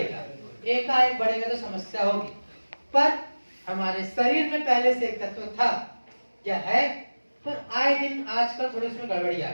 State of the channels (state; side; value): inverted; both; correlation -1.00